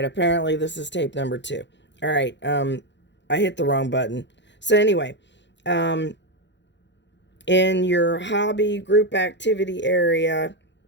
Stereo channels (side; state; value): right; late; 0.52 ms